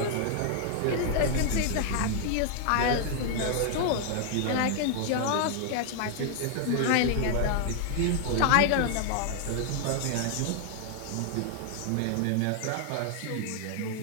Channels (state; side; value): different; both; correlation 0.00